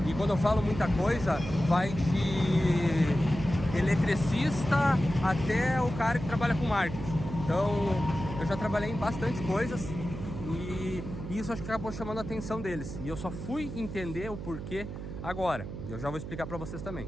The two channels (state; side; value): noise; right; hum, 8 dB below the sound